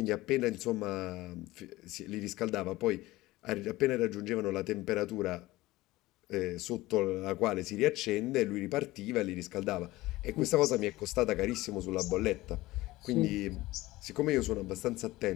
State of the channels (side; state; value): right; quieter; 18.5 dB